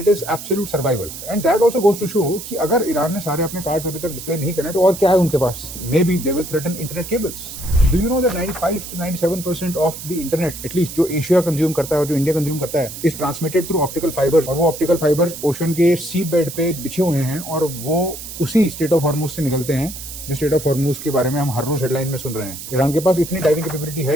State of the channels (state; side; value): noise; right; hiss, 11 dB below the sound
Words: is absolute survival. And that also goes to show कि अगर ईरान ने सारे अपने कार्ड्स अभी तक डिस्प्ले नहीं करे तो और क्या है उनके पास. May be they will threaten internet cables. Do you know that 95 to 97% of the internet at least जो एशिया कंज्यूम करता है और जो इंडिया कंज्यूम करता है is transmitted through optical fibres. और वो ऑप्टिकल फाइबर्स ओशन के सी बेड पे बिछे हुए हैं और वो उसी स्टेट ऑफ हॉर्मुज से निकलते हैं जो स्टेट ऑफ हॉर्मुज के बारे में हम हर रोज हेडलाइन में सुन रहे हैं. ईरान के पास इतनी डाइविंग कैपेबिलिटी